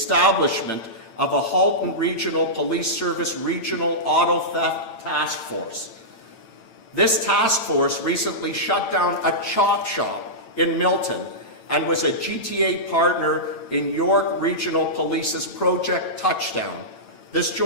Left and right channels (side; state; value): right; late; 8.9 ms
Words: of a Halton Regional Police Service Regional Auto Theft Task Force. This task force recently shut down a chop shop in Milton and was a GTA partner in York Regional Police's Project Touchdown. This